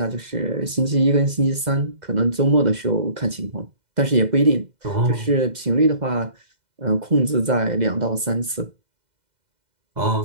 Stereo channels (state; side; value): late; left; 2.0 ms